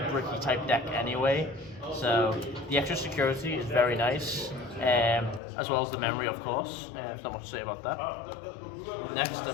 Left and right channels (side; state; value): right; drops out; at 5.4 s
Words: bricky type deck anyway. So the extra security is very nice, as well as the memory of course. There's not much to say about that. Next I